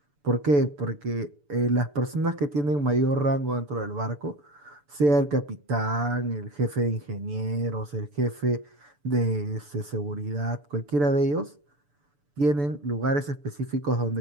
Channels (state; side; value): late; left; 6.9 ms